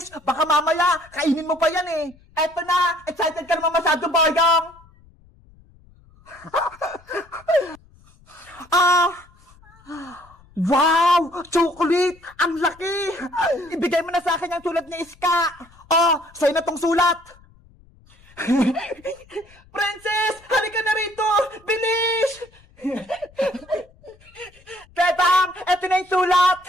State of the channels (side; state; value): left; noise; rumble, 27 dB below the sound